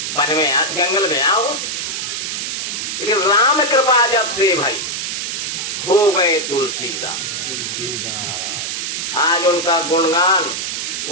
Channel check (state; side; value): noise; right; hiss, 3 dB below the sound